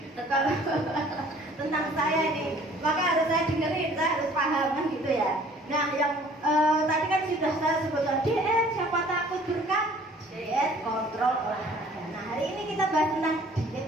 kalau tentang saya ini, maka harus saya dengerin, saya harus paham kan gitu ya. Nah, yang tadi kan sudah saya sebutkan diet, siapa takut berkat diet kontrol olahraga. Nah, hari ini kita bahas tentang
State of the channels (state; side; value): normal; both; correlation 0.53